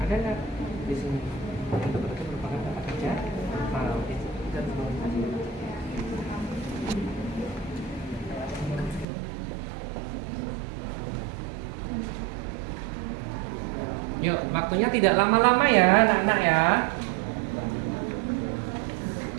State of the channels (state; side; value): drops out; left; at 9.1 s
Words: Ada nggak di sini? Itu berarti merupakan kata kerja atau dan Yuk, waktunya tidak lama-lama ya, anak-anak ya.